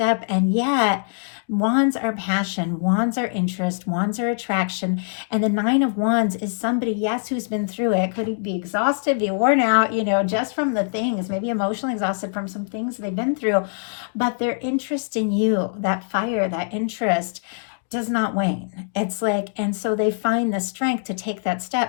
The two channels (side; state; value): right; silent; digital silence